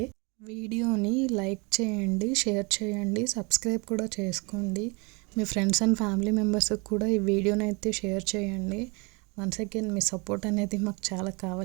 వీడియోని లైక్ చేయండి, షేర్ చేయండి, సబ్స్క్రైబ్ కూడా చేసుకోండి. మీ ఫ్రెండ్స్ అండ్ ఫ్యామిలీ మెంబర్స్కి కూడా ఈ వీడియోని అయితే షేర్ చేయండి. వన్స్ అగైన్ మీ సపోర్ట్ అనేది మాకు చాలా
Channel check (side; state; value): left; quieter; 29.4 dB